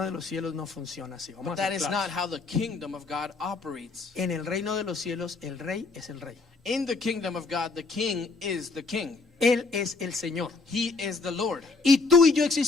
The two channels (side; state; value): right; quieter; 4.0 dB